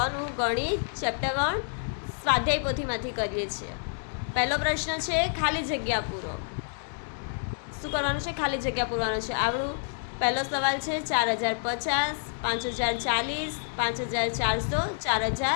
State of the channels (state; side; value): silent; right; digital silence